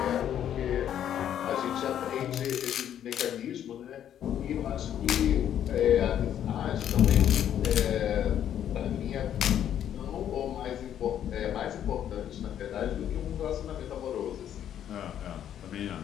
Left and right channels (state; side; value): quieter; right; 10.1 dB